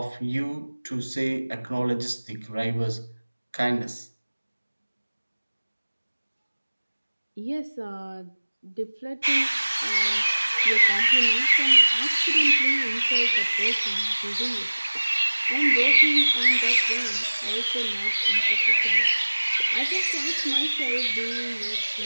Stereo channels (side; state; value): both; inverted; correlation -1.00